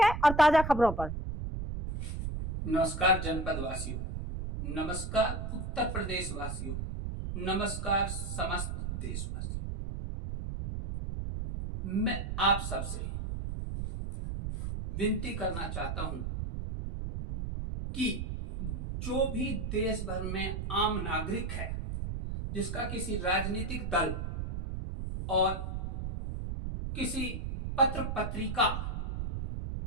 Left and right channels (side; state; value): right; noise; rumble, 4 dB below the sound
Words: और ताजा खबरों पर। नमस्कार जनपद वासियों, नमस्कार उत्तर प्रदेश वासियों, नमस्कार समस्त देशवासियों। मैं आप सबसे विनती करना चाहता हूं कि जो भी देश भर में आम नागरिक है जिसका किसी राजनीतिक दल और किसी पत्र पत्रिका